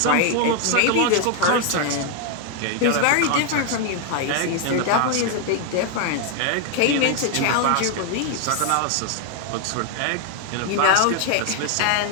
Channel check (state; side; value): different; both; correlation 0.01